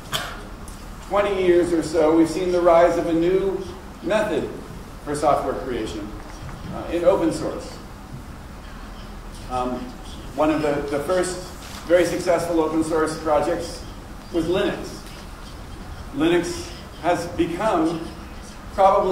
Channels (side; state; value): both; identical; correlation 1.00